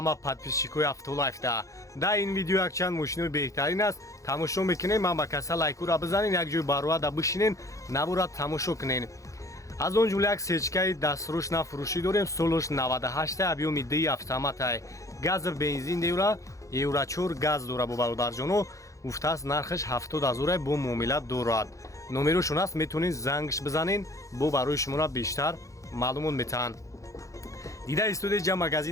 подписчикои Автолайфда. Дар ин видео якчанд мошинои беҳтарин аст. Тамошо мекунем, ман ба каса лайкура бизанин, як ҷои барояда бишинен, навора тамошо кунен. аз он ҷумла як сечкаи дастрӯшна фурӯшӣ дорем, солош 98 объёми 2 автоматай. Гази бензин деюра, евро 4 газ дора бо бародарҷоно. гуфтааст нархаш 70 000 бо муомила дорад. номерошон аст, метавонед зангш бизанен, бо барои шуморо бештар маълумот метаҳанд. дида студияи ҷа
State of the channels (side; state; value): right; late; 0.15 ms